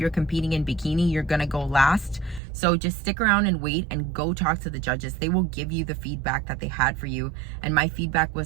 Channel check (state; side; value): drops out; left; at 2.4 s